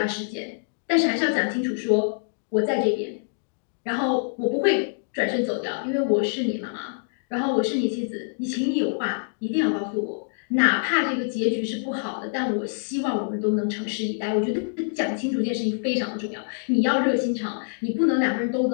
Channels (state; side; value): silent; right; digital silence